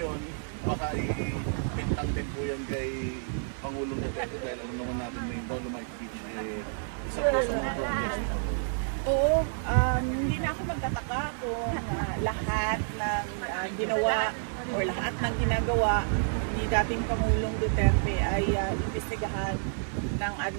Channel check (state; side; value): silent; left; digital silence